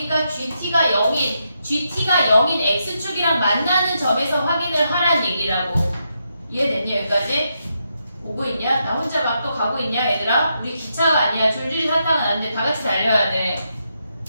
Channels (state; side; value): inverted; both; correlation -0.82